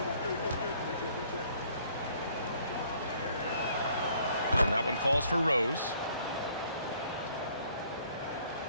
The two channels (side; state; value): both; inverted; correlation -0.61